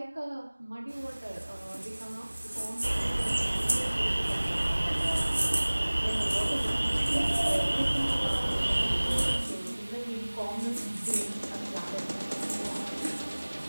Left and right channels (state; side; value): inverted; both; correlation -1.00